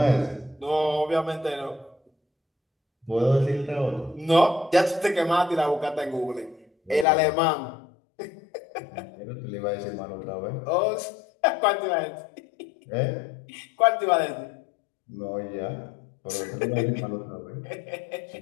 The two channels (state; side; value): drops out; right; at 7.1 s